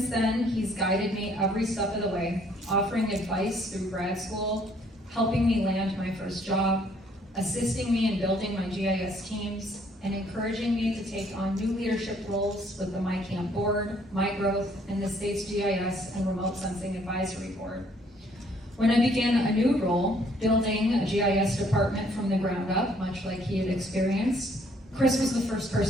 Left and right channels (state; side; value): normal; both; correlation 0.64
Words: then, he's guided me every step of the way, offering advice through grad school, helping me land my first job, assisting me in building my GIS teams, and encouraging me to take on new leadership roles with the MICAMP board, MyGrowth, and the state's GIS and Remote Sensing Advisory Board. When I began a new role, building a GIS department from the ground up, much like he had experienced, Chris was the first